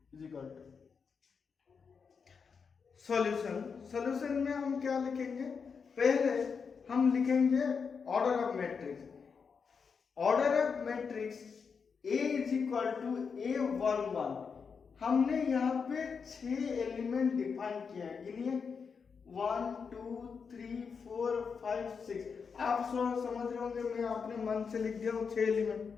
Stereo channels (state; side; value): quieter; right; 5.8 dB